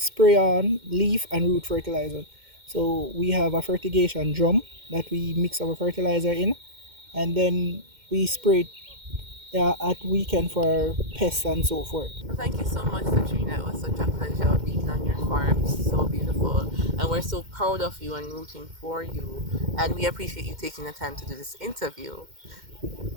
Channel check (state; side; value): late; left; 2.1 ms